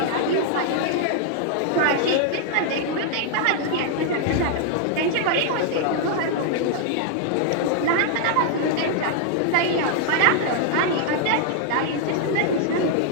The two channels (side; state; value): both; different; correlation 0.00